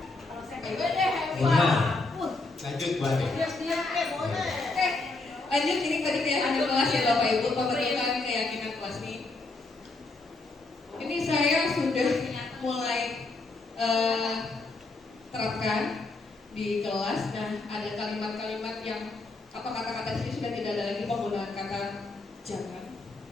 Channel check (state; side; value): quieter; right; 3.4 dB